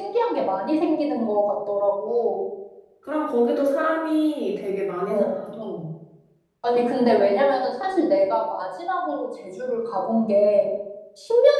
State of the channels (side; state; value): both; identical; correlation 1.00